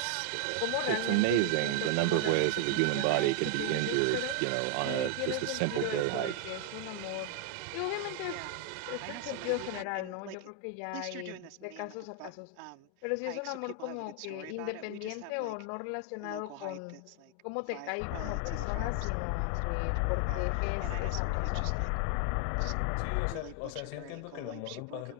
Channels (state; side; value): different; both; correlation 0.00